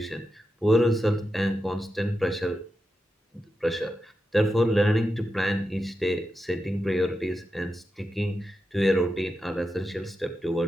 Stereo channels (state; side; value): normal; both; correlation 0.88